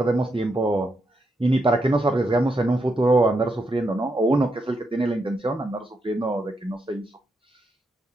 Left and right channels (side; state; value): both; normal; correlation 0.81